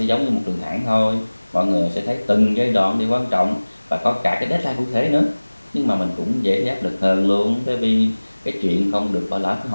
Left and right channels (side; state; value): both; inverted; correlation -1.00